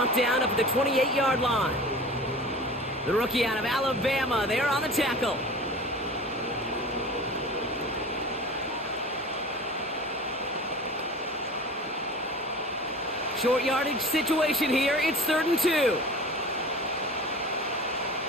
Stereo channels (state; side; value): normal; both; correlation 0.38